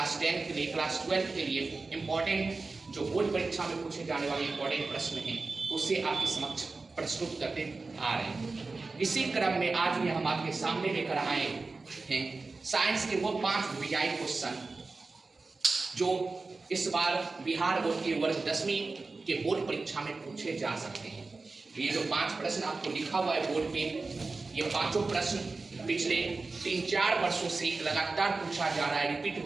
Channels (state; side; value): quieter; left; 3.8 dB